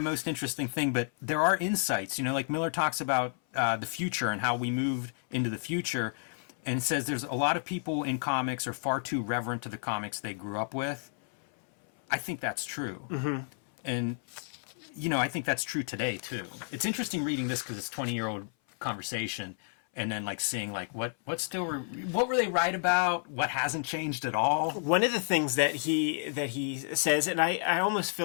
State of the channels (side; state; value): right; silent; 57 dB below the other